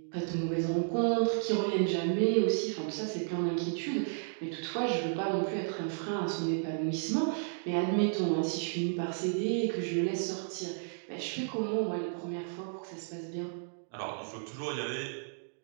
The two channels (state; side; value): silent; left; digital silence